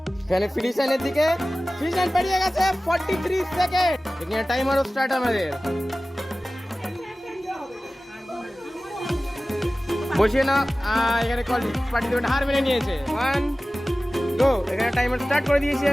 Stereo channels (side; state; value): both; normal; correlation 0.97